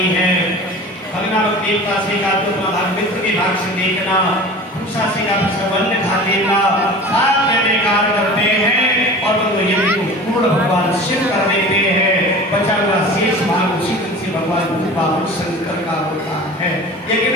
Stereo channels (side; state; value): both; normal; correlation 0.38